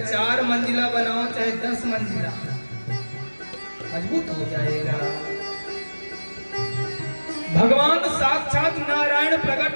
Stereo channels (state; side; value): inverted; both; correlation -1.00